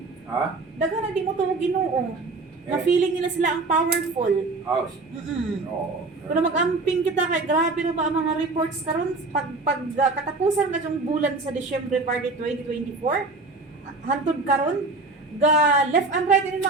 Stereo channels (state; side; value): quieter; left; 3.5 dB